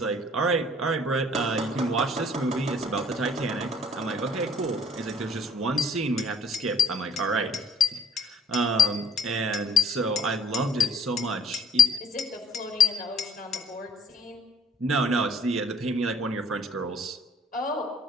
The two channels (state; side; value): normal; both; correlation 0.53